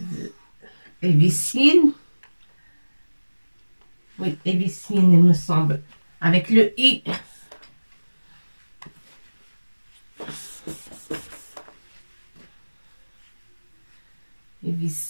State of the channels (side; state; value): both; inverted; correlation -1.00